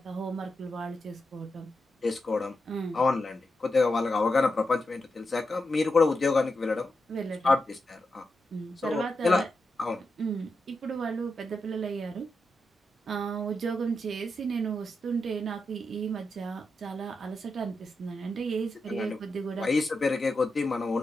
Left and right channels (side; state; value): both; normal; correlation 0.87